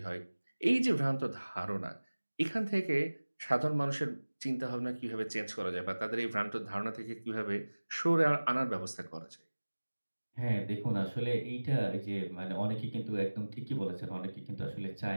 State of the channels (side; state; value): both; inverted; correlation -1.00